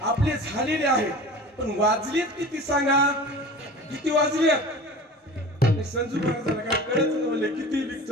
आपले झालेले आहेत. पण वाजलेत किती सांगा, किती वाजलेत? संजू महाराजांना काय कळत नव्हते किती लीक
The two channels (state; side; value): normal; both; correlation 0.38